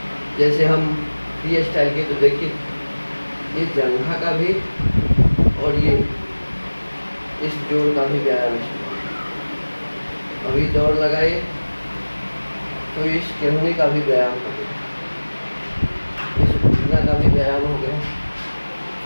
जैसे हम फ्री स्टाइल के, तो देखिए ये जंघा का भी और ये इस जोड़ का भी व्यायाम है। अभी दौड़ लगाए, तो इस कहने का भी व्यायाम हो गया, इस घुटना का भी व्यायाम हो गया।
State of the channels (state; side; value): inverted; both; correlation -1.00